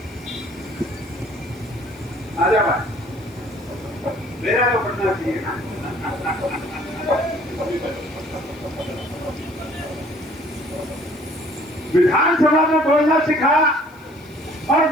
आजा भाई, मेरा तो पढ़ना चाहिए ना। विधानसभा में बोलना सिखाया, और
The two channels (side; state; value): left; noise; hiss, 29 dB below the sound